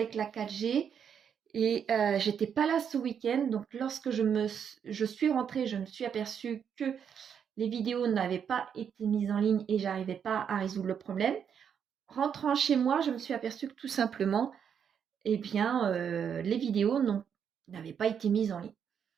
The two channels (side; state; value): left; quieter; 7.8 dB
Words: la 4G. Et j'étais pas là ce week-end. Donc lorsque je suis rentrée, je me suis aperçue que les vidéos n'avaient pas été mises en ligne et j'arrivais pas à résoudre le problème. Rentrant chez moi, je me suis aperçue que tout simplement, eh bien, les vidéos n'avaient pas été mises en ligne.